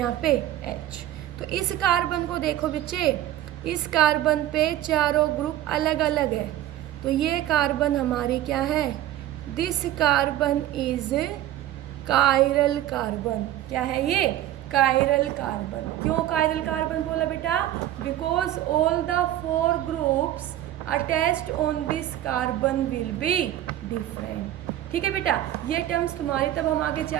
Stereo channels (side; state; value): left; quieter; 13.2 dB